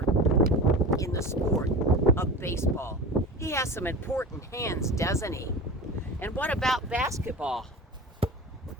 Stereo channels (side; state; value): both; normal; correlation 0.31